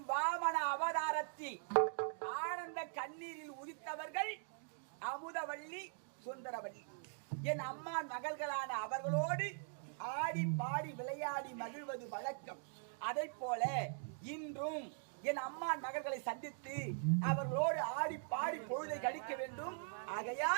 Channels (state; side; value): silent; left; digital silence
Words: வாமன அவதாரத்தில் ஆனந்த கண்ணீரில் உதித்தவர்கள் அமுதவள்ளி சுந்தரவள்ளி என் அம்மா மகள்களான அவர்களோடு ஆடி பாடி விளையாடி மகிழ்வது வழக்கம். அதை போல இன்றும் என் அம்மா மகள்களை சந்தித்து அவர்களோடு ஆடி பாடி பொழுதை கழிக்க வேண்டும்.